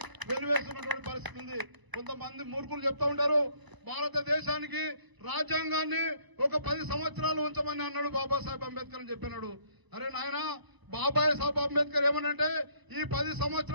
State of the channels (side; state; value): left; late; 1.0 ms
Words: వెలివేస్తున్నటువంటి పరిస్థితి ఉంది. కొంతమంది మూర్ఖులు చెప్తా ఉంటారు, భారతదేశానికి రాజ్యాంగాన్ని ఒక 10 సంవత్సరాలు ఉంచమని అన్నాడు బాబాసాహెబ్ అంబేద్కర్ అని చెప్పినాడు. అరే నాయన, బాబాసాహెబ్ అంబేద్కర్ ఏమనంటే ఈ 10